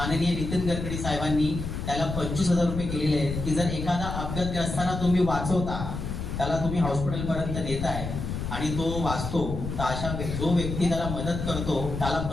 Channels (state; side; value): noise; left; rumble, 5 dB below the sound